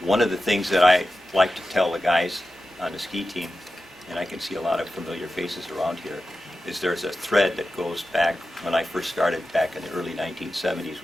one of the things that I like to tell the guys on the ski team, and I can see a lot of familiar faces around here, is there's a thread that goes back when I first started back in the early 1970s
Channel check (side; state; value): both; normal; correlation 0.92